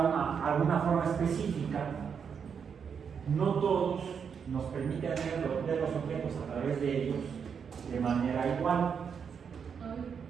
alguna forma específica, no todos nos permiten ver los objetos a través de ellos de manera igual.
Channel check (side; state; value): left; quieter; 6.8 dB